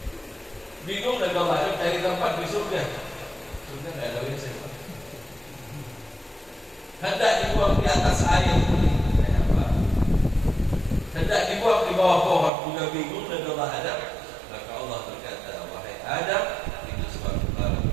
Bingung Nabi Allah Adam cari tempat di surga. Surga tidak ada WC. Hendak dibuang di atas air, hendak dibuang di bawah pohon, juga bingung Nabi Allah Adam. Maka Allah berkata, wahai Adam, itu sebab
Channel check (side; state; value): left; drops out; at 12.5 s